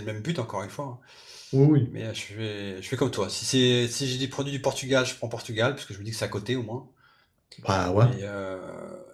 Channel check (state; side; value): identical; both; correlation 1.00